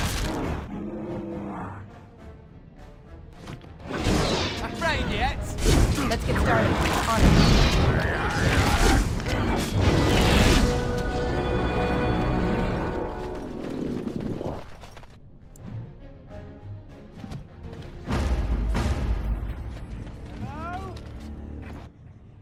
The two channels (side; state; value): both; identical; correlation 1.00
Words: Afraid yet? Let's get started. On it.